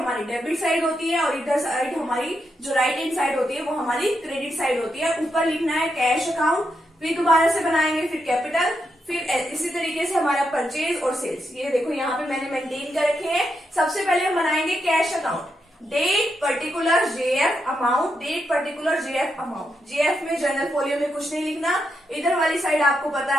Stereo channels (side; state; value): both; normal; correlation 0.83